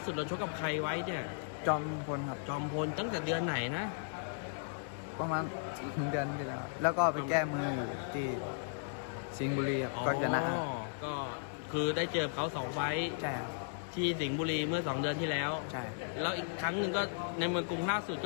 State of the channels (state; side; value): silent; right; digital silence